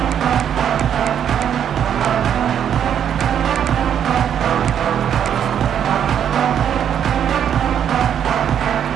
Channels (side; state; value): left; quieter; 9.0 dB